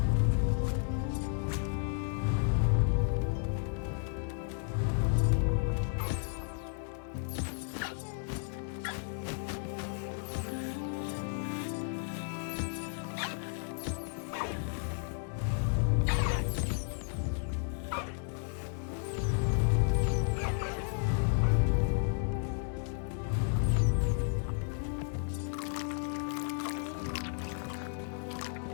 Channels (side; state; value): right; silent; 56 dB below the other